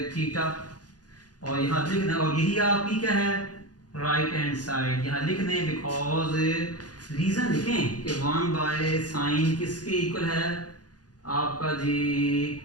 थीटा। और यहाँ लिख दें, और यही आपकी क्या है राइट हैंड साइड, यहाँ लिख दें बिकॉज रीजन लिखें कि 1 बाय साइन किसके इक्वल है, आपका जी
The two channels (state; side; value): late; right; 0.69 ms